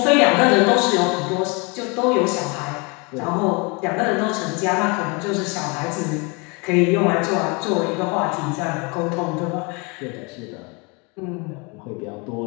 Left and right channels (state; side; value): quieter; right; 30.1 dB